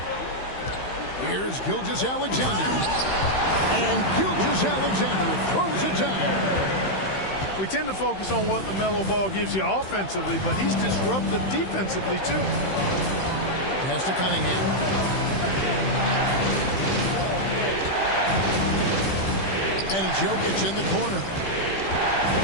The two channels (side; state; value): right; late; 15 ms